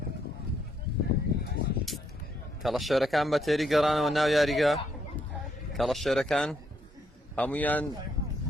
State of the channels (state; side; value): normal; both; correlation 0.74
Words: کەڵە شێرەکان بە تێری گەڕانەوە ناو یاریگا کەڵە شێرەکان هەمویان